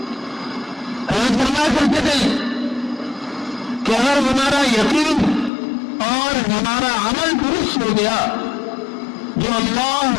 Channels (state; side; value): drops out; right; at 5.5 s